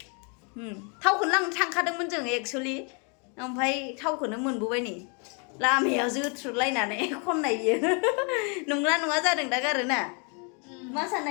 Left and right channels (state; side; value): quieter; right; 35.9 dB